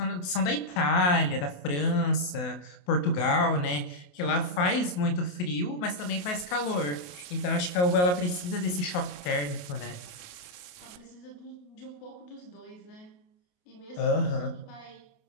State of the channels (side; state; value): right; late; 28 ms